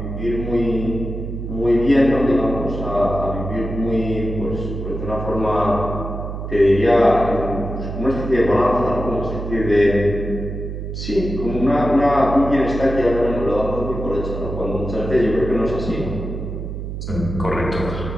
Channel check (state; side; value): noise; right; hum, 6 dB below the sound